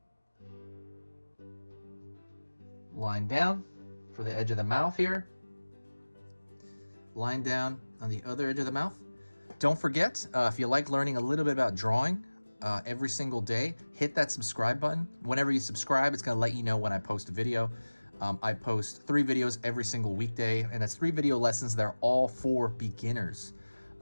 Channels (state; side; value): inverted; both; correlation -1.00